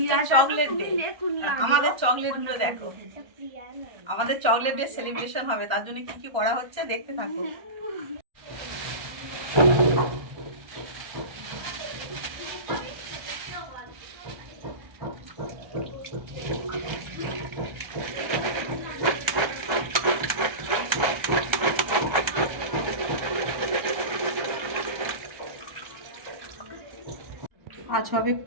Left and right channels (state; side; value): late; left; 1.3 ms